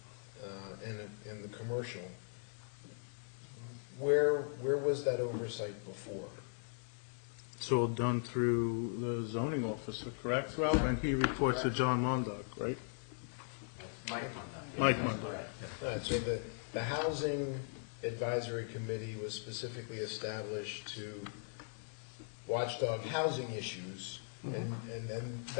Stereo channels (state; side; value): silent; right; digital silence